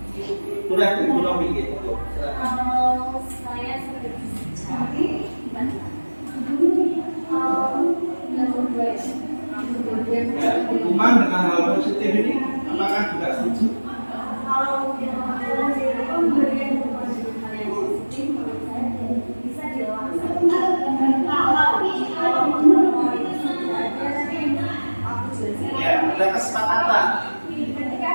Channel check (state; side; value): inverted; both; correlation -1.00